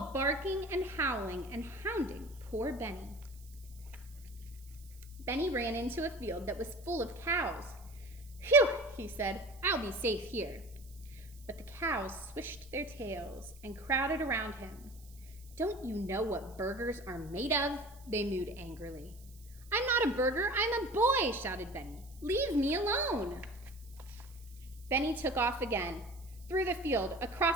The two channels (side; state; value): right; noise; hiss, 24 dB below the sound